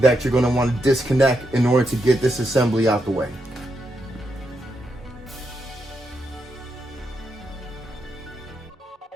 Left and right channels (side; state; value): both; normal; correlation 0.83